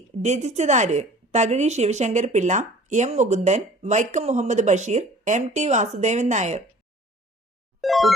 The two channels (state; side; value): normal; both; correlation 0.49